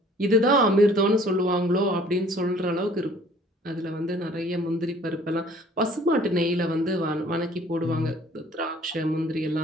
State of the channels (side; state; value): both; normal; correlation 0.54